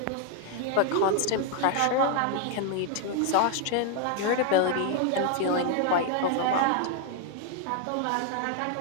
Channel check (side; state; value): both; different; correlation 0.00